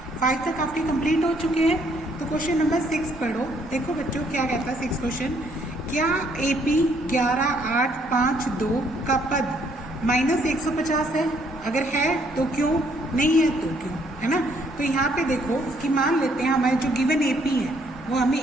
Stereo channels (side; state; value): both; normal; correlation 0.67